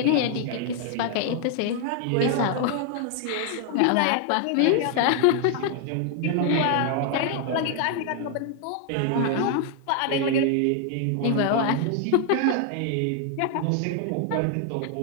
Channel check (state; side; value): different; both; correlation 0.00